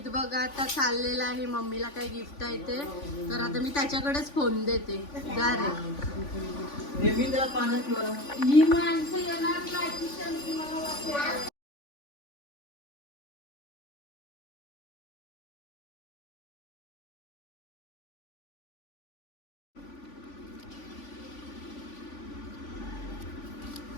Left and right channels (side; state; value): right; late; 3.5 ms